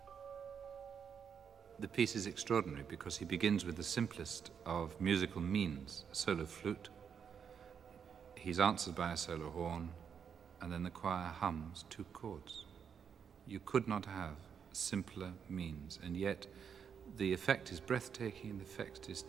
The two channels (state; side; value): quieter; left; 7.2 dB